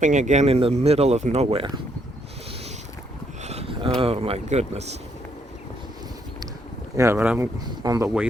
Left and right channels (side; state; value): both; normal; correlation 0.73